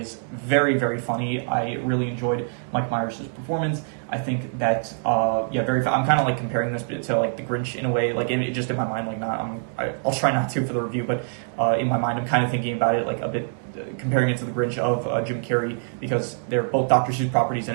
very, very funny. I really enjoyed Mike Myers' performance. I think that, yeah, I'm kind of like comparing this to like The Grinch in a way, like just in my mind, like I'll try not to for the review, but in my mind, I'm kind of thinking about it like a bit, comparing it to The Grinch of Jim Carrey, because they're both Dr. Seuss properties, and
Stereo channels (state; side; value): silent; left; digital silence